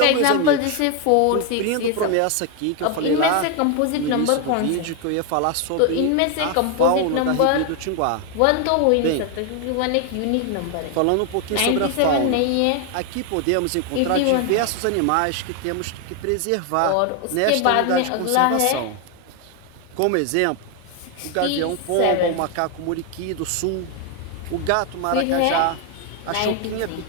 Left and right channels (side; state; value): both; different; correlation 0.01